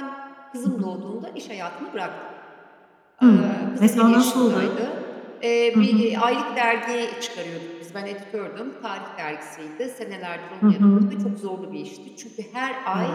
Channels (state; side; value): identical; both; correlation 1.00